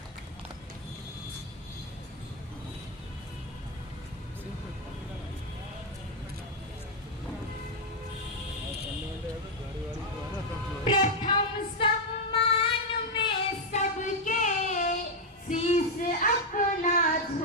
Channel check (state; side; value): normal; both; correlation 0.01